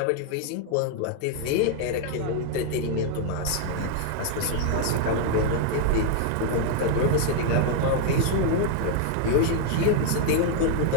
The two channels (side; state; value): both; different; correlation 0.00